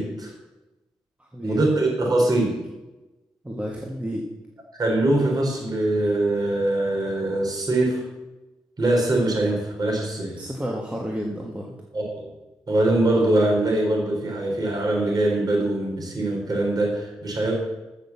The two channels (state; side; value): normal; both; correlation 0.84